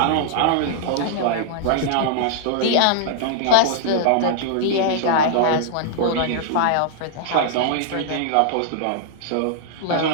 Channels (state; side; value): different; both; correlation -0.01